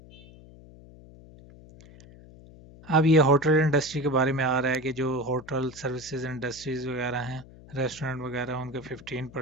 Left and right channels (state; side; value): noise; left; hum, 21 dB below the sound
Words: अब ये होटल इंडस्ट्री के बारे में आ रहा है कि जो होटल सर्विसेज इंडस्ट्रीज वगैरह हैं, रेस्टोरेंट वगैरह, उनके